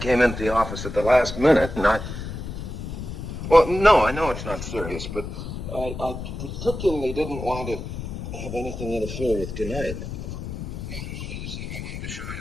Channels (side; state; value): left; noise; rumble, 7 dB below the sound